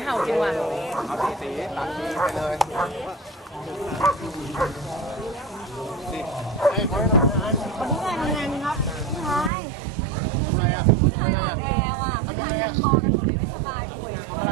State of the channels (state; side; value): drops out; left; at 9.5 s